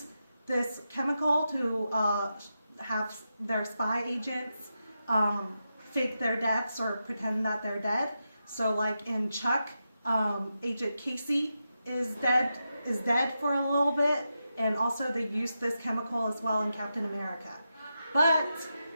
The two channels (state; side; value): inverted; both; correlation -0.88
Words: this chemical to have their spy agents fake their deaths or pretend that they're dead. So like in Chuck, Agent Casey is dead for a little bit, and also they use this chemical as well in Captain America. But